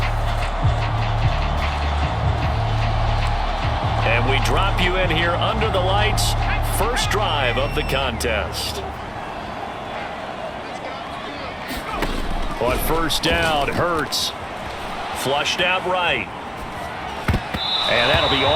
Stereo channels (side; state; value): both; identical; correlation 1.00